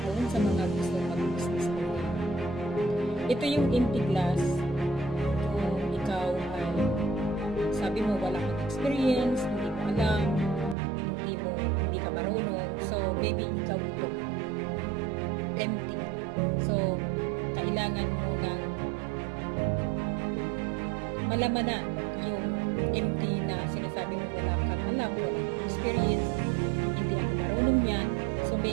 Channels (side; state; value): left; drops out; at 10.8 s